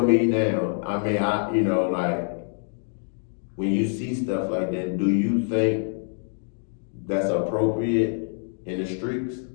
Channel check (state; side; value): silent; right; digital silence